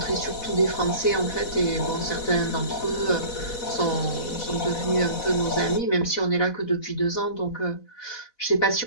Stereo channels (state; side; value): late; right; 4.1 ms